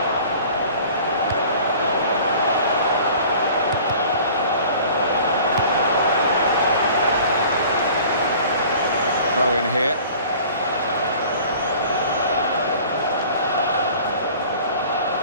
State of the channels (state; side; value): inverted; both; correlation -0.46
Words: throw in here.